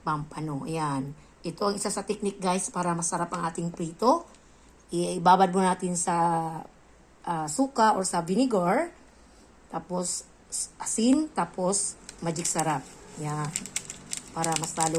pampano. Yan. Ito ang isa sa technique guys para masarap ang ating prito. Ibabad mo natin sa suka or sa vinegar. Tapos asin. Tapos magic sarap. Yan. Para mas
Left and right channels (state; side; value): identical; both; correlation 1.00